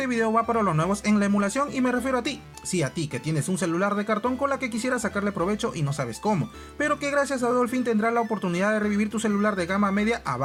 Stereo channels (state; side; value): identical; both; correlation 1.00